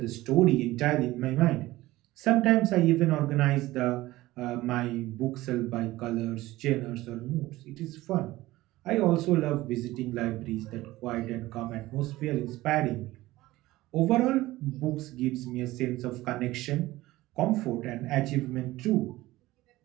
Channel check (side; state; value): left; quieter; 17.7 dB